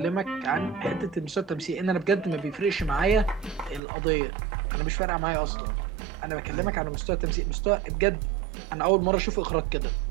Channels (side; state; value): left; drops out; at 3.8 s